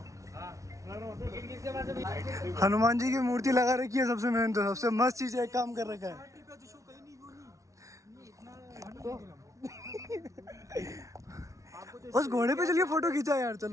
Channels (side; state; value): left; late; 0.15 ms